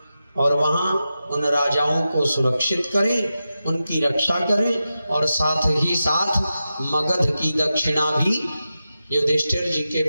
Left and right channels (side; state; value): both; inverted; correlation -0.91